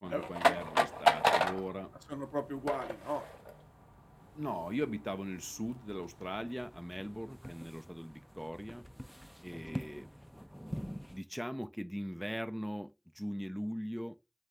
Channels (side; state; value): both; identical; correlation 1.00